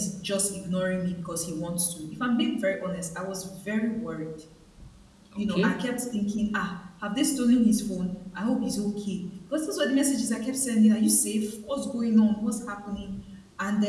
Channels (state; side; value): identical; both; correlation 1.00